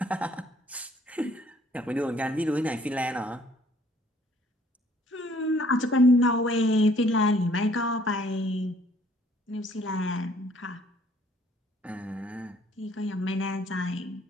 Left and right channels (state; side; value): normal; both; correlation 0.60